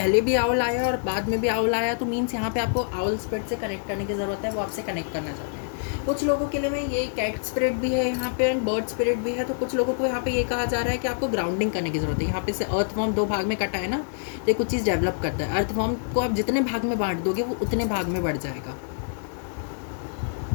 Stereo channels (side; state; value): right; silent; digital silence